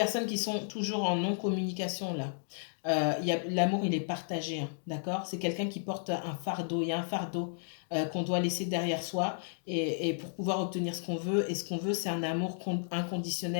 qui sont toujours en non-communication là, l'amour il est partagé, hein, d'accord? C'est quelqu'un qui porte un fardeau, il y a un fardeau qu'on doit laisser derrière soi et pour pouvoir obtenir ce qu'on veut. Et ce qu'on veut, c'est un amour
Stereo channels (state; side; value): silent; right; digital silence